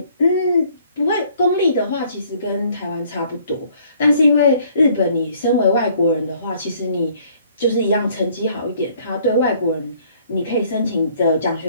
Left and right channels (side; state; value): both; inverted; correlation -0.60